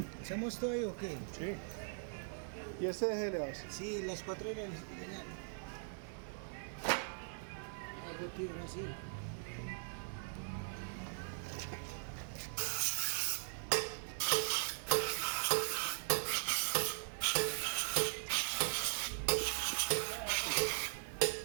¿Hacemos todo ahí o qué? Sí. ¿Y este de le hace? Sí, las 4 de la... Algo tío, así.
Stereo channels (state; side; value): silent; left; 51 dB below the other